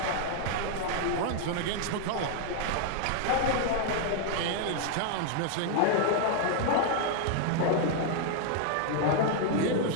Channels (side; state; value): both; different; correlation 0.00